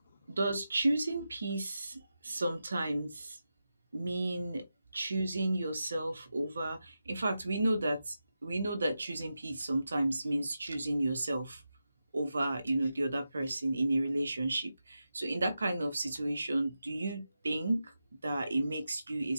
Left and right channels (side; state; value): both; inverted; correlation -0.90